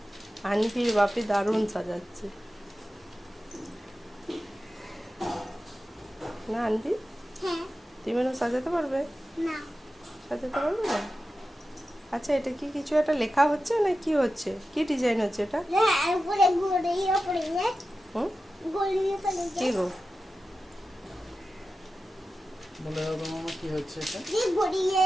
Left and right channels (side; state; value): both; normal; correlation 0.93